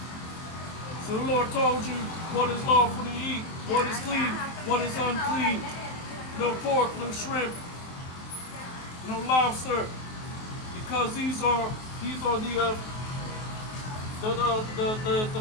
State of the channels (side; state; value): right; late; 23 ms